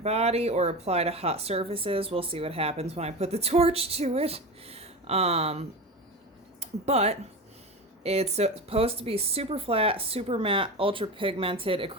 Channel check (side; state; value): both; normal; correlation 0.25